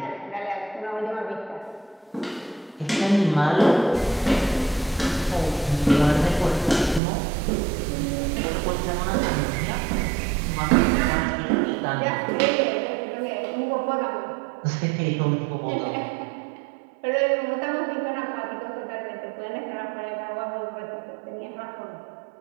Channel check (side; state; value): left; drops out; at 7.0 s